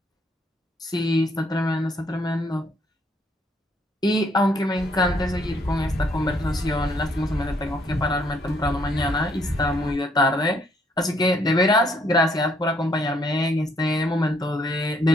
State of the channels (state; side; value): normal; both; correlation 0.69